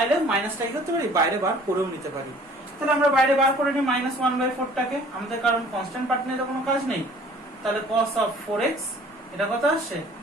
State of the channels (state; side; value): normal; both; correlation 0.52